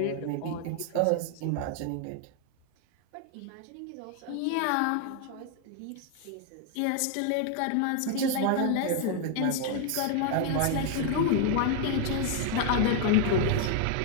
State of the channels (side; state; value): both; different; correlation 0.00